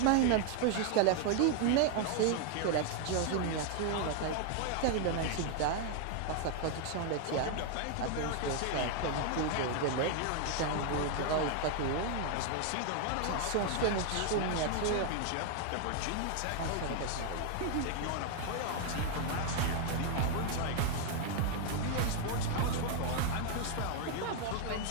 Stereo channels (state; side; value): different; both; correlation 0.00